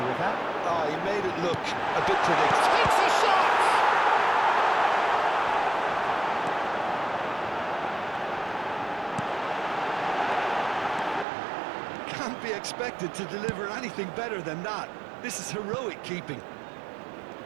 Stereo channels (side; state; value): left; drops out; at 11.2 s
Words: with that. Oh, he made it look a bit predictable. It's a shot! Can't be expected to deliver anything better than that. This is heroic keeping.